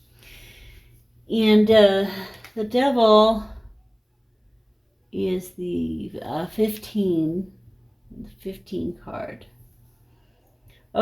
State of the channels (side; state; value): both; identical; correlation 1.00